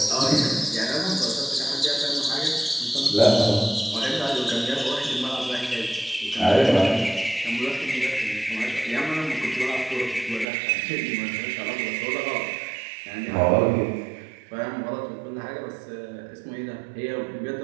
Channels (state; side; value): drops out; left; at 10.5 s